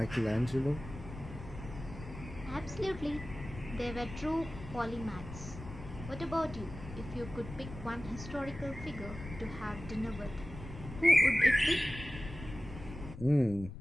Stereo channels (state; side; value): noise; left; rumble, 12 dB below the sound